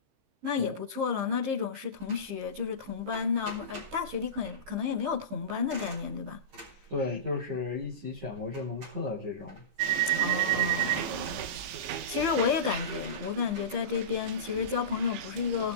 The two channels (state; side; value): late; left; 15 ms